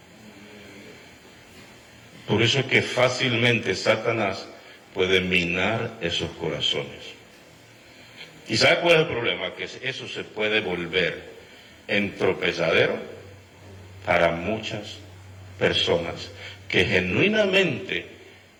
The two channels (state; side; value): identical; both; correlation 1.00